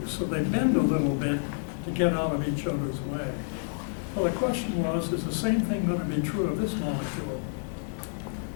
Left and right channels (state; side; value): silent; right; digital silence